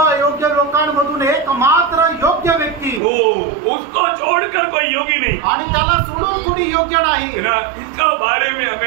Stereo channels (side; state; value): left; drops out; at 3.0 s